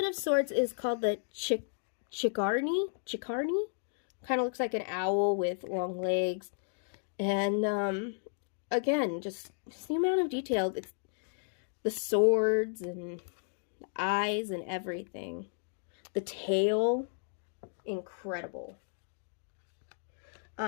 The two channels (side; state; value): right; silent; digital silence